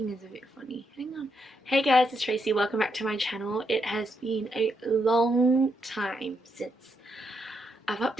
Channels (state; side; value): normal; both; correlation 0.79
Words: is a bit funny. Hang on. Hey guys, it's Tracy. Welcome back to my channel. It has been a long time since I've